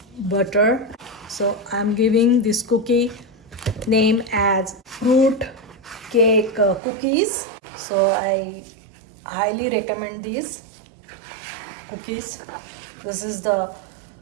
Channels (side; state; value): left; drops out; at 6.8 s